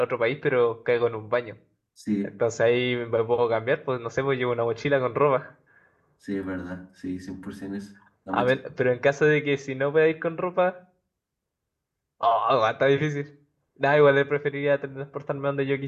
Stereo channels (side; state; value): both; identical; correlation 1.00